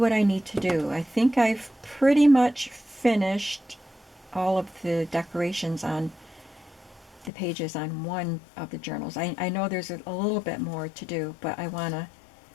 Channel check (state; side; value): drops out; right; at 7.3 s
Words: I need to do. I think I've pretty much finished all of the decorations on the pages on one of the journals. I know there's a little bit more to do, but I want